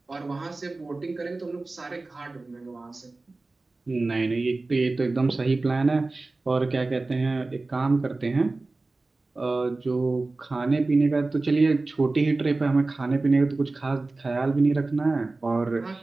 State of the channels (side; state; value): left; quieter; 3.3 dB